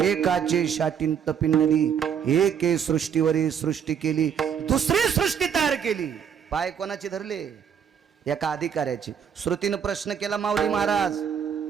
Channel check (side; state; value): left; quieter; 7.9 dB